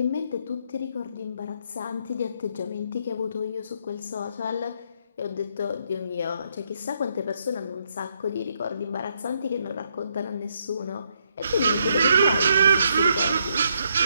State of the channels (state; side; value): inverted; both; correlation -0.75